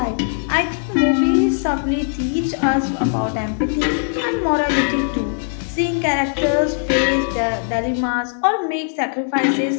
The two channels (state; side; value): silent; right; 66 dB below the other